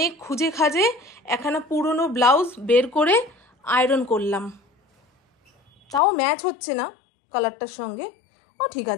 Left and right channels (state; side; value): drops out; right; at 6.0 s